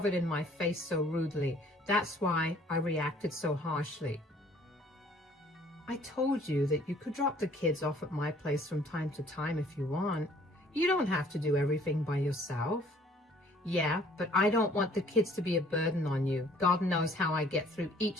it in my face so rudely. That's why I reacted so harshly. I told you that you could drop the kids off at my place from time to time if you want. You don't have to do everything by yourself. Yeah, but I don't want the kids to be a burden on you. God knows how I get through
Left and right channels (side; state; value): both; normal; correlation 0.57